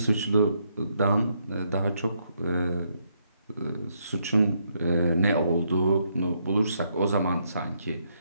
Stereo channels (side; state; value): both; inverted; correlation -0.75